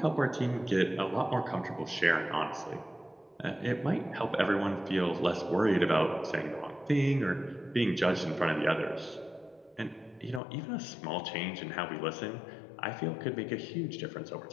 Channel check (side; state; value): right; drops out; at 10.4 s